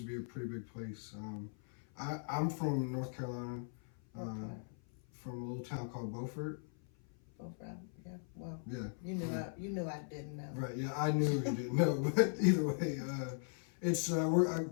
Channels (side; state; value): right; silent; 52 dB below the other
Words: to be a pretty big place. I'm from North Carolina, from a little town called Beaufort. Beaufort, yeah. Well, Yeah. You knew I didn't know. Right. Yeah, I knew you didn't know, but either way, it's I